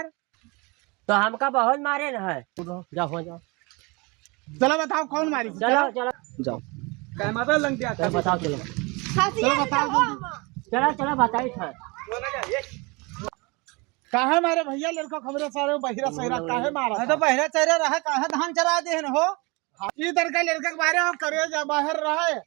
तो हमका बहुत मारे न है। जाओ हो जाओ, चलो बताओ कौन मारी? चलो चलो जाओ। काय मारा लंग दिया? चलो बताओ, चलो चलो बताओ जल्दी। चलो चलो बताई था। काहे मारे भैया? लड़का खबरे सारे बहिरा सहिरा काहे मारा? तो बहरा चेहरा रहा काहे धान चरा देहन हो। इधर का लड़का के बारे में करे जा बाहर रहे।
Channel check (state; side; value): quieter; left; 27.2 dB